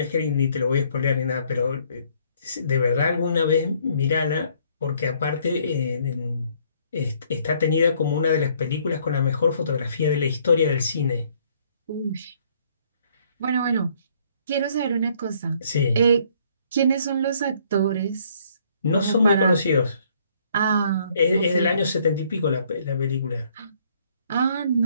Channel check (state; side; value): inverted; both; correlation -0.64